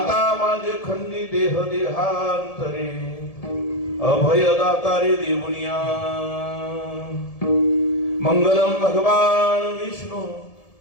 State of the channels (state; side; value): late; right; 1.7 ms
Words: माझे खंडी देह देहांतरे, अभयदातारे देऊनिया मंगलम भगवान विष्णु,